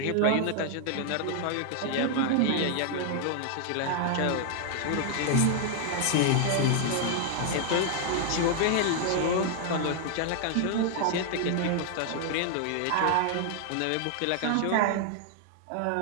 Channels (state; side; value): different; both; correlation 0.00